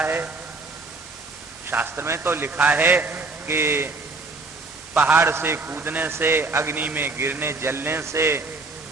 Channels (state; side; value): quieter; left; 3.6 dB